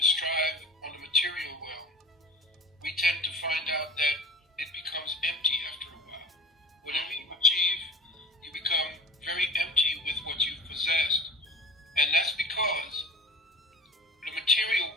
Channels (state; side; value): normal; both; correlation 0.38